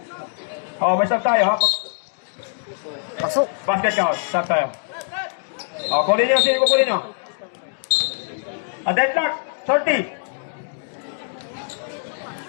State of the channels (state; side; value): silent; right; digital silence